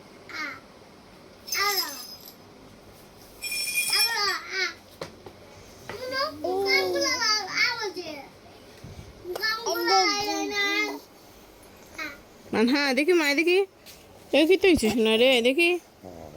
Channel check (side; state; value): both; identical; correlation 1.00